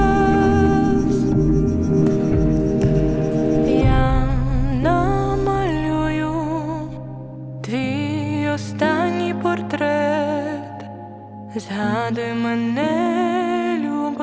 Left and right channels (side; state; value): both; identical; correlation 1.00